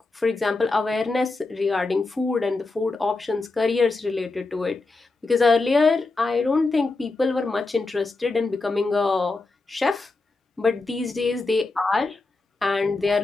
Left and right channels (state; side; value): quieter; right; 3.5 dB